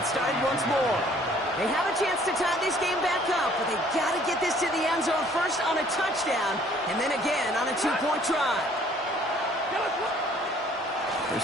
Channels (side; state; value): both; normal; correlation 0.58